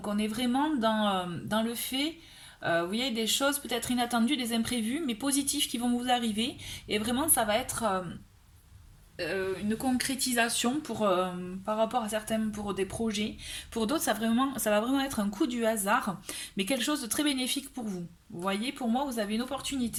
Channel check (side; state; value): both; identical; correlation 1.00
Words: on est vraiment dans le fait, vous voyez, des choses peut-être inattendues, des imprévus mais positifs qui vont vous arriver et vraiment ça va être une concrétisation par rapport à certains pour des projets. Pour d'autres, ça va vraiment être un coup du hasard, mais quelque chose de très bénéfique pour vous. Vous voyez, pour moi, vous avez une